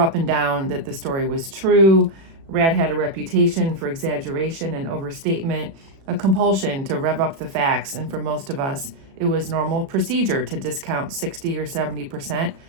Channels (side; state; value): left; late; 36 ms